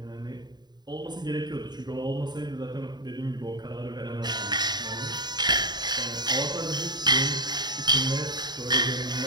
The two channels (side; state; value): left; late; 0.20 ms